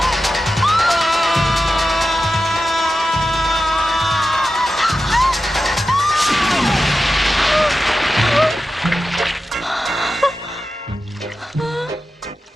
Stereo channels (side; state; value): both; normal; correlation 0.91